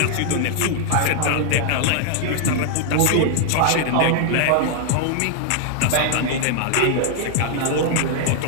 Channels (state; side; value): different; both; correlation 0.00